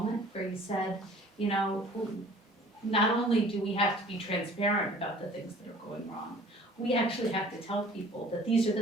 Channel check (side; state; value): both; normal; correlation 0.50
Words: where you said, not only do we have to be transparent about the things that are going wrong, we actually have to tell people that these are